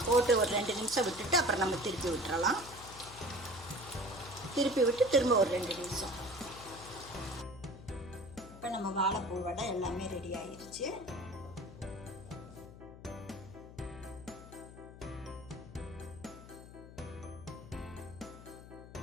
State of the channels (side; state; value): left; noise; hum, 16 dB below the sound